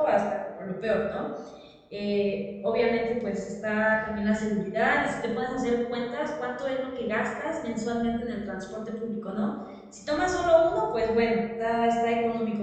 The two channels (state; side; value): identical; both; correlation 1.00